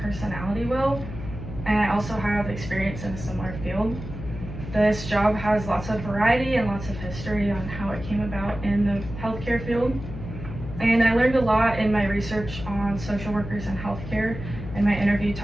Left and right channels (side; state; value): left; noise; hum, 10 dB below the sound